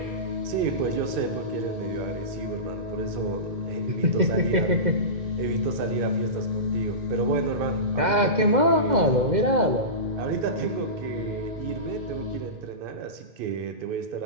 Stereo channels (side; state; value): left; late; 2.1 ms